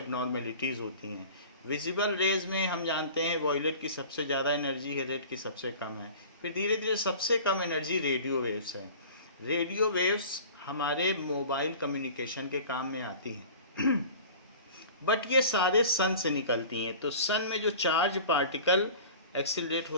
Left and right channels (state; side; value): inverted; both; correlation -0.41